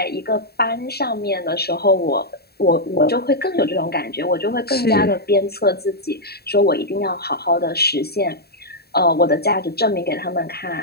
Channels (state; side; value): late; right; 0.46 ms